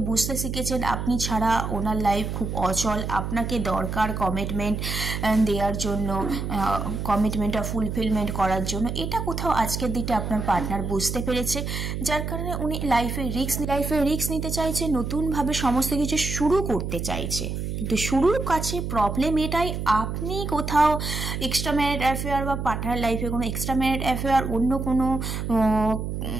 বুঝতে শিখেছেন আপনি ছাড়া ওনার লাইফ খুব অচল, আপনাকে দরকার কমিটমেন্ট দেওয়ার জন্য, কমিটমেন্টটা ফুলফিলমেন্ট করার জন্য। এটা কোথাও আজকের দিকে আপনার পার্টনার বুঝতে পেরেছে, যার কারণে উনি লাইফে রিস্ক নিতে চাইছে, নতুনভাবে সমস্ত কিছু শুরু করতে চাইছে। কিন্তু শুরুর কাছে প্রবলেম এটাই, আপনি কোথাও এক্সট্রা ম্যারিড অ্যাফেয়ার বা পার্টনার লাইফে কোনো এক্সট্রা ম্যারিড অ্যাফেয়ার, অন্য কোনো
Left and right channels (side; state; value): right; noise; hum, 4 dB below the sound